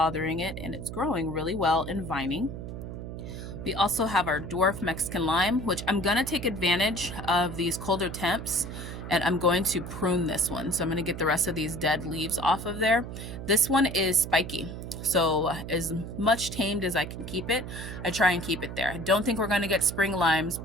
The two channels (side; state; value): right; noise; hum, 8 dB below the sound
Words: it, and it's growing really well and vining. We also have our dwarf Mexican lime, which I'm gonna take advantage of these colder temps, and I'm going to prune this one. So I'm gonna get the rest of these dead leaves off of there. This one is spiky. So as much tamed as I can keep it, I try and keep it there. I don't think we're gonna get spring limes,